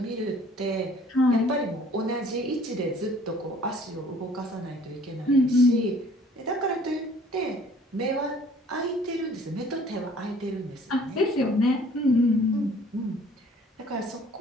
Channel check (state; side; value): normal; both; correlation 0.54